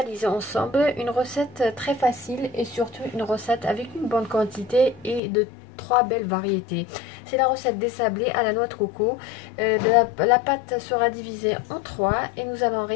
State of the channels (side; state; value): right; drops out; at 5.2 s